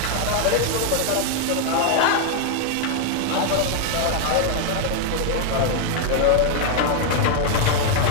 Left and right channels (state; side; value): different; both; correlation 0.00